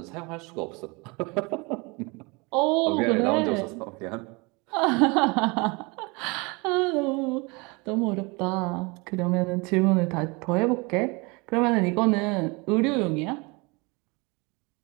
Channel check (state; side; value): quieter; left; 27.6 dB